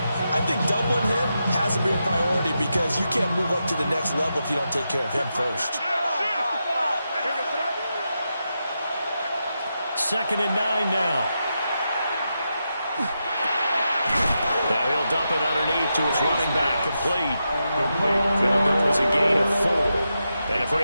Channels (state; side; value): inverted; both; correlation -0.87